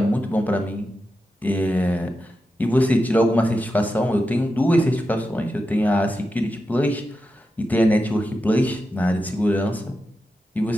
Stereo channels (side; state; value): both; normal; correlation 0.89